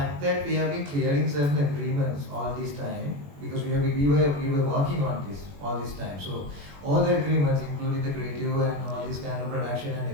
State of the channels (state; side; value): late; left; 21 ms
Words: that we have been clearing certain agreements all this time, because we were working on this all this time. So all the agreements, including the creative and all this kind of production